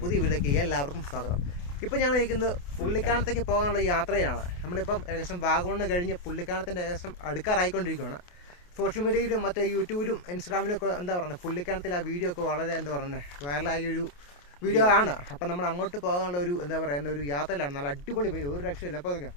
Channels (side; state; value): right; late; 28 ms